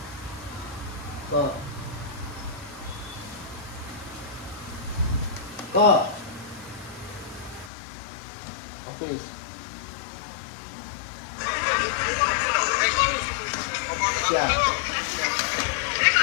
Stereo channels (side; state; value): right; drops out; at 7.7 s